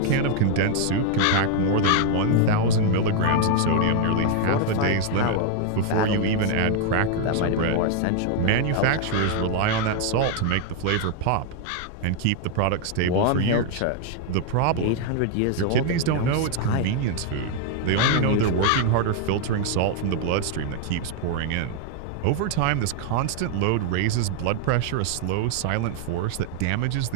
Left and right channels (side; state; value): both; different; correlation 0.00